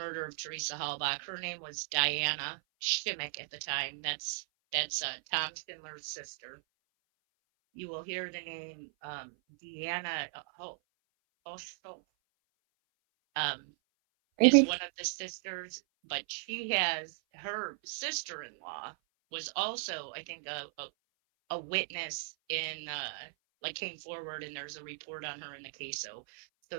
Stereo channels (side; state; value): left; silent; 54 dB below the other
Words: of Teresa Halbach. Her name was Diana Schimmick at the time. That's Tom Schindler's sister. You will hear the name Deanna is one of the sisters, but she has her sister-in-law was also, I think, a witness in came forward, and there's a report on her in the case. So